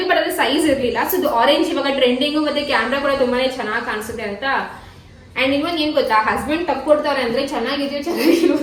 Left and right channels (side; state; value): both; identical; correlation 1.00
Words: ಬಟ್ ಅದು ಸೈಜ್ ಇರ್ಲಿಲ್ಲ. ಸೊ ಇದು ಆರೆಂಜ್ ಇವಾಗ ಟ್ರೆಂಡಿಂಗು, ಮತ್ತೆ ಕ್ಯಾಮ್ರಾ ಕೂಡ ತುಂಬಾನೇ ಚೆನ್ನಾಗಿ ಕಾಣಿಸುತ್ತೆ ಅಂತ. ಅಂಡ್ ಇನ್ನೊಂದು ಏನ್ ಗೊತ್ತಾ, ಹಸ್ಬೆಂಡ್ ತಕ್ಕೊಡ್ತಾರೆ ಅಂದ್ರೆ ಚೆನ್ನಾಗಿದೆಯೋ ಚೆನ್ನಾಗಿರೋ